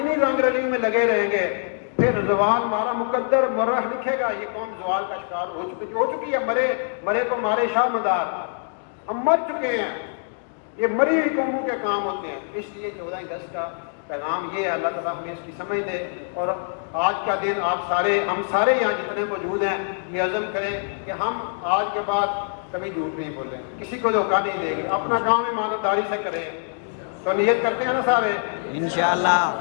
انہی رنگ رلی میں لگے رہیں گے پھر زوال ہمارا مقدر مرہ لکھے گا. یہ قوم زوال کا شکار ہو چکی ہے. مرے کو مارے شاہ مدار, ہم مر چکے ہیں. یہ مری ہوئی قوموں کے کام ہوتے ہیں. اس لیے 14 اگست کا پیغام یہ ہے, اللہ تعالیٰ ہمیں اس کی سمجھ دے. اور آج کا دن ہم سارے یہاں جتنے موجود ہیں یہ عزم کریں کہ ہم آج کے بعد کبھی جھوٹ نہیں بولیں, کسی کو دھوکہ نہیں دیں گے, اپنا کام ایمانداری سے کریں. تو نیت کرتے ہیں نا سارے, انشاءاللہ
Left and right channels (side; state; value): right; silent; digital silence